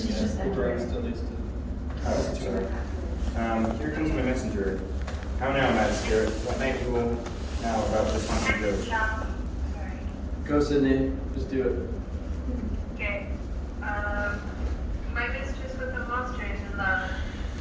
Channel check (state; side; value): identical; both; correlation 1.00